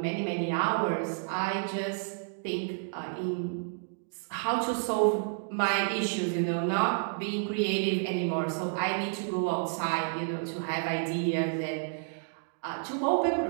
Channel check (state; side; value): silent; left; digital silence